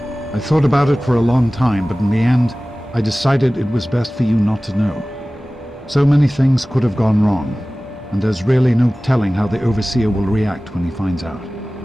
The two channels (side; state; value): both; normal; correlation 0.97